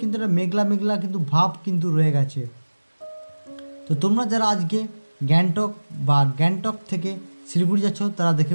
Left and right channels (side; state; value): both; inverted; correlation -1.00